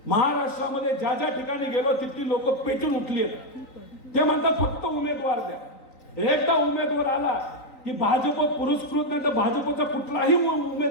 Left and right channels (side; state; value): right; late; 3.9 ms